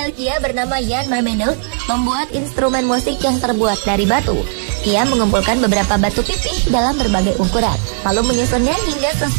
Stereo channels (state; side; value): silent; left; digital silence